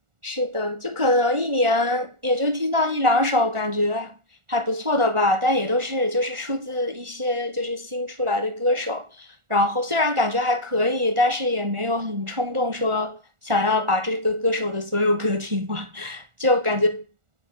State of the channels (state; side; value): late; left; 1.4 ms